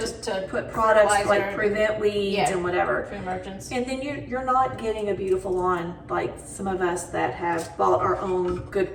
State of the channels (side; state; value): both; identical; correlation 1.00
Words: to put products like fertilizer, prevent weeds and whatever. pre-emergence. And then you're not getting a beautiful lawn like some of us that have bought our own good